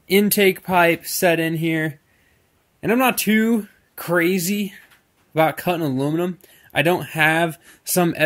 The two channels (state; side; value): identical; both; correlation 1.00